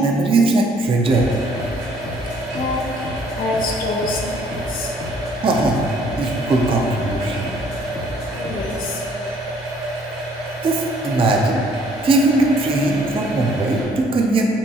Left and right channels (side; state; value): both; normal; correlation 0.61